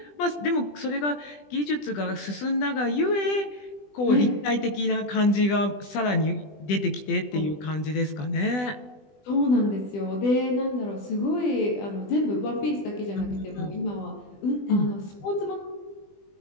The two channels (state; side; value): late; right; 20 ms